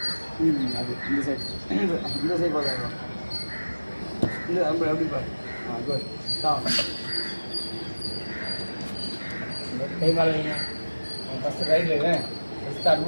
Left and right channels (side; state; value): both; inverted; correlation -1.00